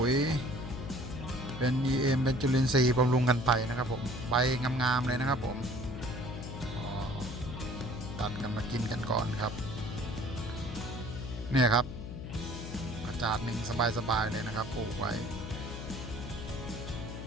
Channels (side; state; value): left; noise; hum, 8 dB below the sound